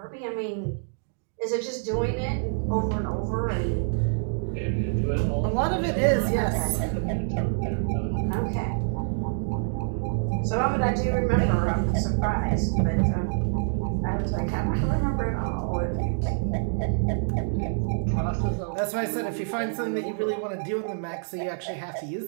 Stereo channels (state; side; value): silent; left; digital silence